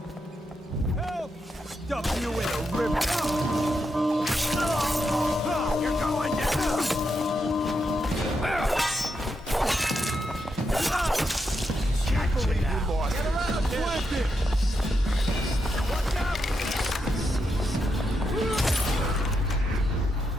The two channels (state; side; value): normal; both; correlation 0.83